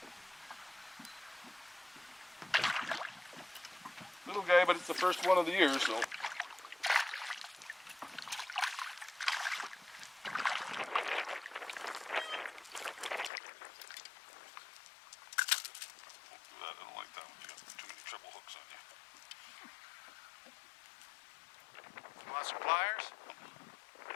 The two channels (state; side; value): drops out; right; at 13.3 s